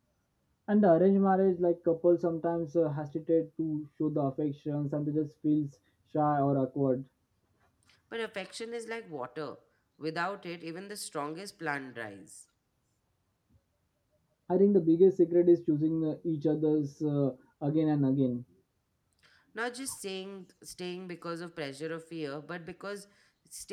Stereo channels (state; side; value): identical; both; correlation 1.00